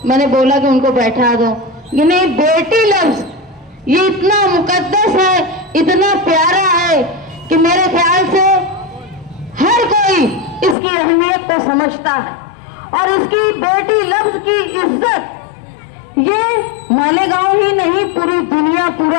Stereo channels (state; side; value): drops out; right; at 10.8 s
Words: मैंने बोला कि उनको बैठा दो। ये नहीं, बेटी लफ्ज ये इतना मुकद्दस है, इतना प्यारा है कि मेरे ख्याल से हर कोई इसकी अहमियत को समझता है और इसकी बेटी लफ्ज की इज्जत ये मालेगांव ही नहीं पूरी दुनिया,